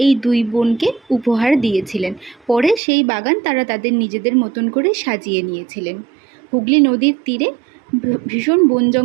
এই দুই বোনকে উপহার দিয়েছিলেন। পরে সেই বাগান তারা তাদের নিজেদের মতন করে সাজিয়ে নিয়েছিলেন। হুগলি নদীর তীরে ভীষণ বন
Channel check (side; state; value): left; drops out; at 2.8 s